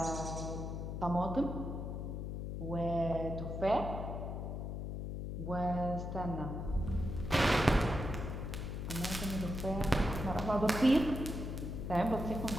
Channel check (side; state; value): left; noise; hum, 4 dB below the sound